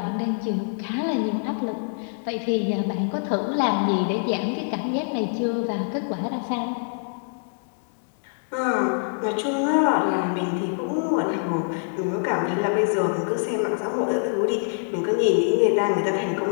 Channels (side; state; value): right; silent; digital silence